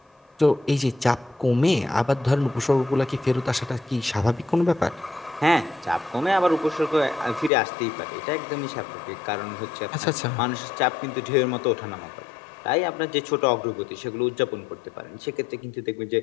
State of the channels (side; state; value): right; drops out; at 7.5 s